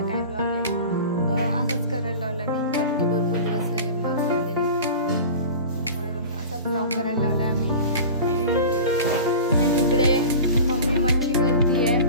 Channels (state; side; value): inverted; both; correlation -0.34